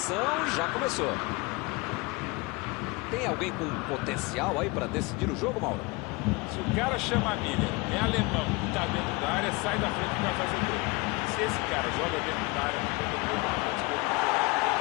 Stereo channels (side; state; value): right; quieter; 25.5 dB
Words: já começou. Tem alguém com potencial aí para decidir o jogo, Mauro? Se o cara chama Miller, é alemão e tá dentro da área, sai da frente e vai fazer gol. Se esse cara joga dentro da área, na ponta do gol, na ponta do gol,